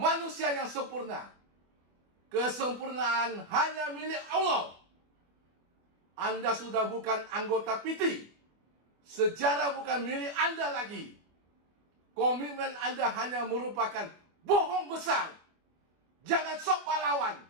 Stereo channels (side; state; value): left; late; 24 ms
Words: yang sempurna. Kesempurnaan hanya milik Allah. Anda sudah bukan anggota PT. Sejarah bukan milik Anda lagi. Komitmen Anda hanya merupakan bohong besar. Jangan sok pahlawan.